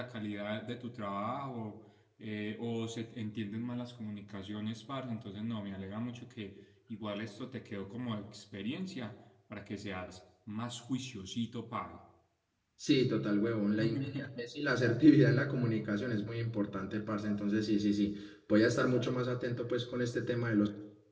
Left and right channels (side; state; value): both; identical; correlation 1.00